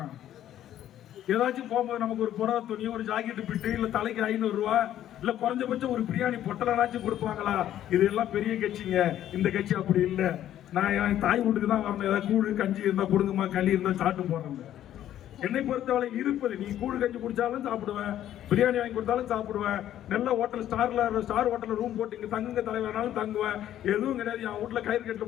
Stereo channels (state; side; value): quieter; right; 11.8 dB